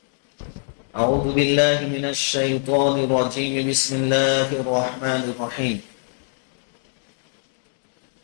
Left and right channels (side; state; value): right; silent; 60 dB below the other